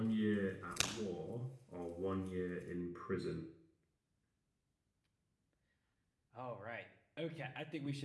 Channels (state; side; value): identical; both; correlation 1.00